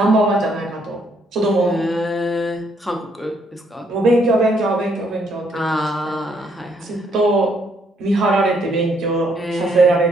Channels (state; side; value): normal; both; correlation 0.71